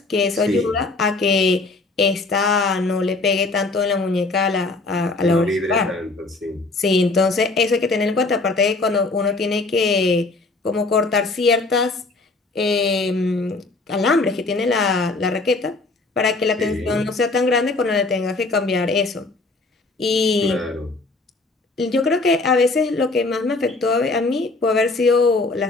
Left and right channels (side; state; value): right; quieter; 3.4 dB